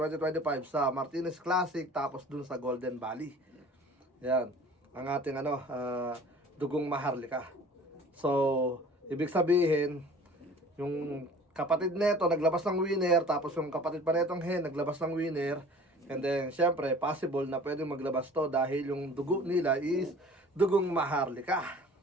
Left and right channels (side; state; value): both; normal; correlation 0.46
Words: sa Martinez Classic, tapos dun sa Golden Valley. Yan, ang ating dugong maharlika. So, ibig sabihin, yung kapatid nito naglabas ng winner, tapos yung kapatid pa netong Hen naglabas ng winner. And then, syempre, possible na pwedeng maglabas to dahil yung dugo nila is dugong maharlika.